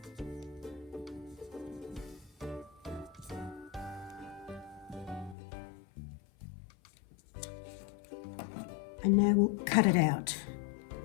And now we'll cut it out.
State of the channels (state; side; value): drops out; right; at 5.4 s